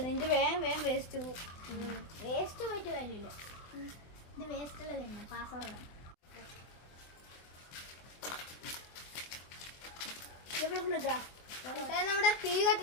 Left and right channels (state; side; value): late; right; 24 ms